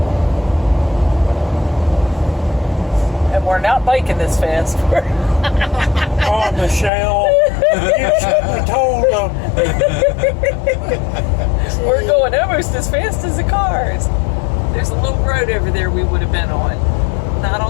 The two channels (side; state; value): right; drops out; at 6.9 s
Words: And we're not biking this fast. Oh, Michelle, you should have told them. We're going almost as fast as the cars. There's a little road over there we would have been on. Not